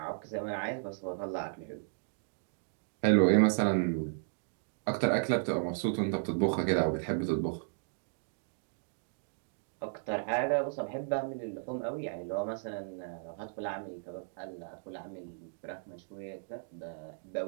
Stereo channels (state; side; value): silent; left; digital silence